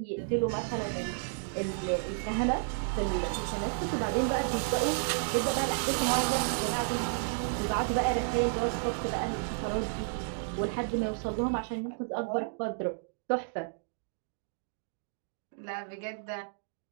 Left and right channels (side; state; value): left; silent; digital silence